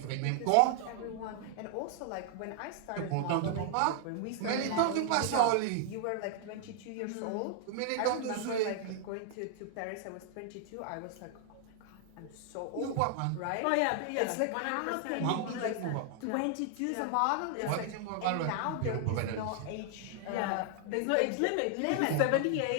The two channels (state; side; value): different; both; correlation 0.00